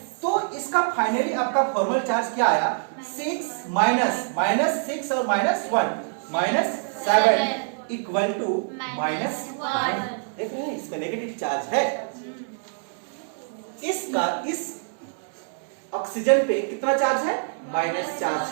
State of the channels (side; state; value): left; silent; digital silence